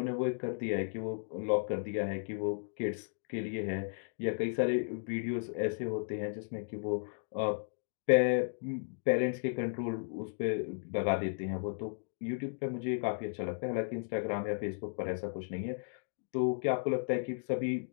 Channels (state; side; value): silent; right; digital silence